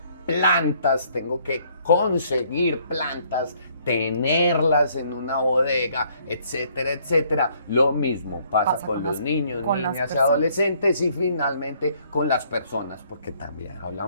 plantas tengo que conseguir plantas, tenerlas en una bodega, etcétera, etcétera. Lo mismo pasa con los niños, con las niñas y personas. adolescentes y finalmente con las personas, porque también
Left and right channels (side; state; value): both; inverted; correlation -0.65